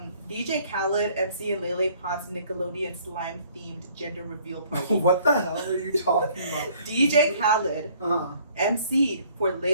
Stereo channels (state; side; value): inverted; both; correlation -0.59